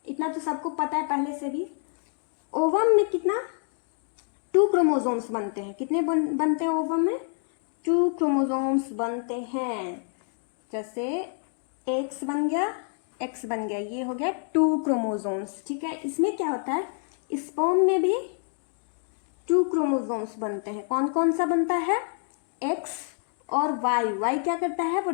इतना तो सबको पता है पहले से भी। ओवम में कितना? 2 क्रोमोसोम्स बनते हैं। कितने बनते हैं ओवम में? 2 क्रोमोसोम्स बनते हैं। जैसे X बन गया, X बन गया, ये हो गया 2 क्रोमोसोम्स, ठीक है। इसमें क्या होता है? स्पर्म में भी 2 क्रोमोसोम्स बनते हैं। कौन कौन सा बनता है? X और Y। Y क्या करता है? वो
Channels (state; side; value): silent; right; 56 dB below the other